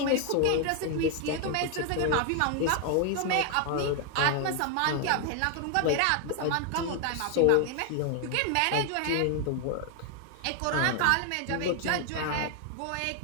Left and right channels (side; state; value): both; different; correlation 0.00